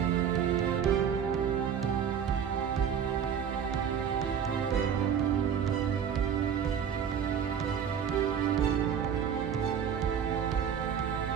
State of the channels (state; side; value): quieter; left; 8.0 dB